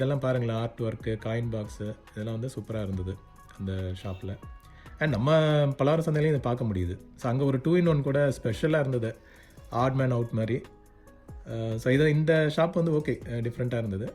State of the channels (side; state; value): both; identical; correlation 1.00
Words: பாருங்களேன், ஆர்ட் ஒர்க்கு, காயின் பாக்ஸு, இதெல்லாம் வந்து சூப்பராக இருந்தது அந்த ஷாப்பில். அண்ட் நம்ம பலவர சந்தையிலையும் இதை பார்க்க முடியுது. ஸோ அங்கே ஒரு 2-in-1 கூட ஸ்பெஷலாக இருந்தது, ஆட் மேன் அவுட் மாதிரி. ஸோ இந்த ஷாப் வந்து ஓகே, டிஃப்ரெண்ட்டாக இருந்தது.